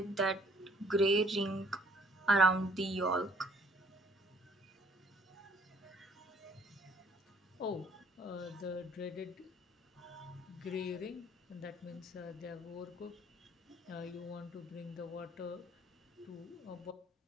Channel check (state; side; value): normal; both; correlation 0.60